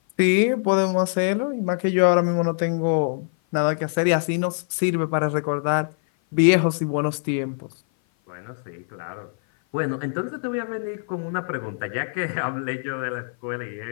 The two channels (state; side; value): silent; right; 56 dB below the other